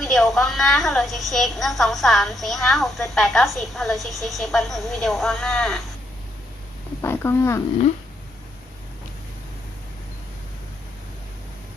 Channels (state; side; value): normal; both; correlation 0.76